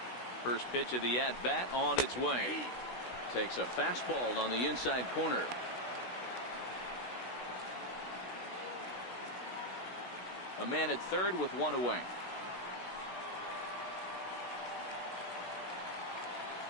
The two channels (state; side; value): late; right; 16 ms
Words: First pitch of the at-bat on its way. Takes a fastball on the inside corner. A man at third with one away.